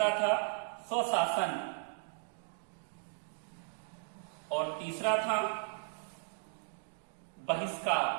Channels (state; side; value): silent; left; 54 dB below the other